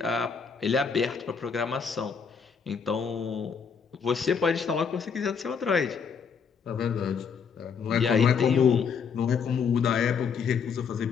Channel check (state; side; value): quieter; right; 6.3 dB